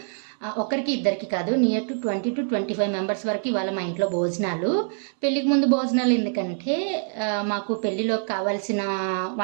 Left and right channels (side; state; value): left; silent; 60 dB below the other